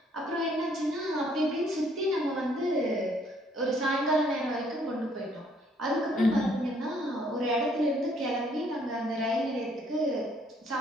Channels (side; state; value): both; normal; correlation 0.65